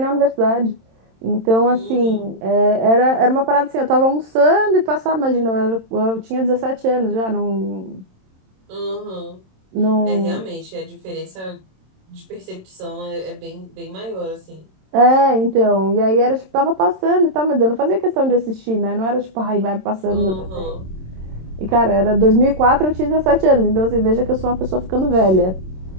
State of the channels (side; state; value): left; late; 27 ms